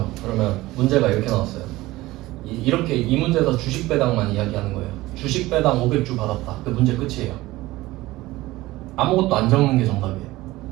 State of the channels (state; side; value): quieter; left; 18.4 dB